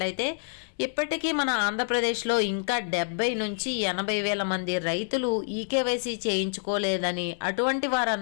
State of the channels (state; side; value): silent; right; 60 dB below the other